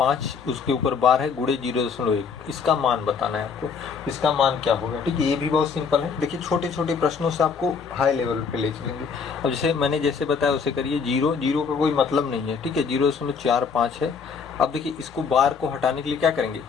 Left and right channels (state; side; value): quieter; right; 5.8 dB